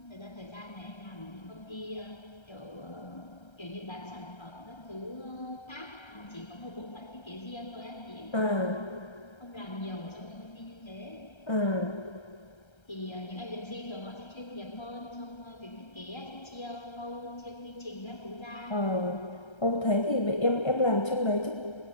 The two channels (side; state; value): right; late; 1.3 ms